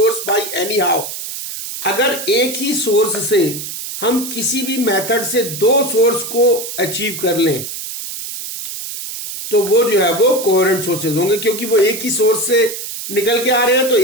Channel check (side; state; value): right; noise; hiss, 8 dB below the sound